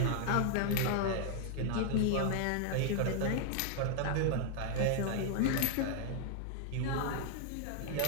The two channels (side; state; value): both; different; correlation 0.00